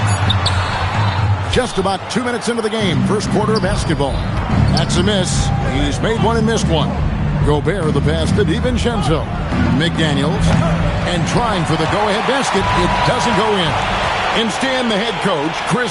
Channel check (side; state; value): both; identical; correlation 1.00